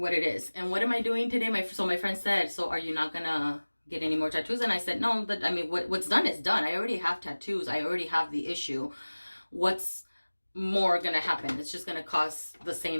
it is. And what am I doing today? So my friend said, so are you not gonna get any more tattoos? And I said, no, I mean, what's done is done. I already have tattoos. I already have the issue. What's more gonna happen? It's just gonna cause the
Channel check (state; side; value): inverted; both; correlation -1.00